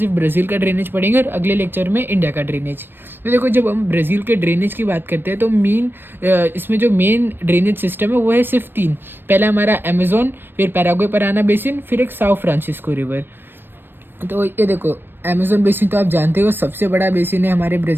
ब्राज़ील का ड्रेनेज पढ़ेंगे और अगले लेक्चर में इंडिया का ड्रेनेज। तो देखो, जब हम ब्राज़ील के ड्रेनेज की बात करते हैं तो इसमें जो मेन ड्रेनेज सिस्टम है वो है सिर्फ 3। पहला हमारा अमेज़न, फिर पैराग्वे पराना बेसिन, फिर एक साओ फ्रांसिस्को रिवर। तो ये देखो, अमेज़न बेसिन तो आप जानते हो सबसे बड़ा बेसिन है हमारे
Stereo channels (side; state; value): left; late; 0.097 ms